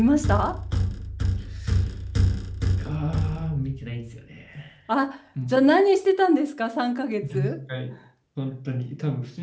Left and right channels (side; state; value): both; identical; correlation 1.00